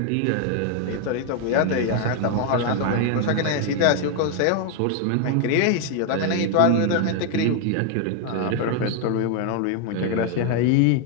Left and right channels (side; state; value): both; different; correlation 0.00